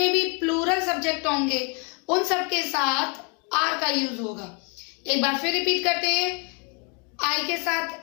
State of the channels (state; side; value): quieter; right; 33.4 dB